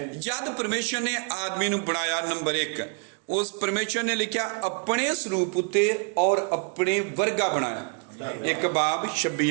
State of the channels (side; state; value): left; quieter; 36.5 dB